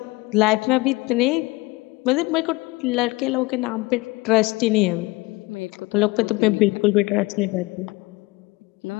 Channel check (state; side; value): quieter; right; 22.8 dB